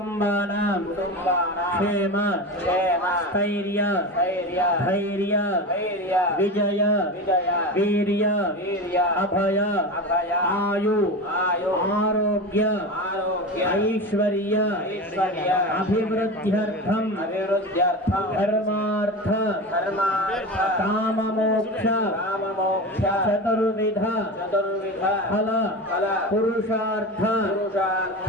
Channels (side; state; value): both; normal; correlation 0.26